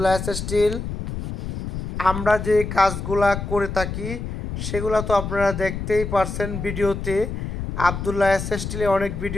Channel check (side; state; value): left; noise; rumble, 5 dB below the sound